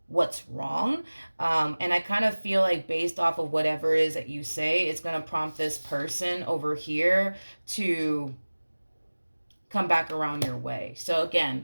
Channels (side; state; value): both; inverted; correlation -1.00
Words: what's wrong. And I kind of feel like based off of whatever it is that you say, it's going to prompt this person over here to come back around your way. So